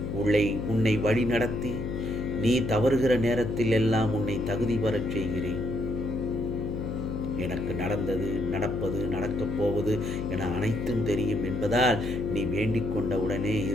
உன்னை வழி நடத்தி நீ தவறுகிற நேரத்தில் எல்லாம் உன்னை தகுதி பெறச் செய்கிறேன். எனக்கு நடந்தது, நடப்பது, நடக்கப் போவது என அனைத்தும் தெரியும் என்பதால் நீ வேண்டிக் கொண்ட உடனே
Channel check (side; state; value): left; noise; hum, 4 dB below the sound